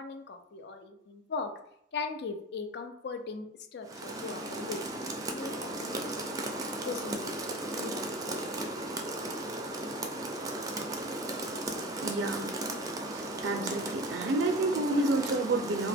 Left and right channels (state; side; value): normal; both; correlation 0.34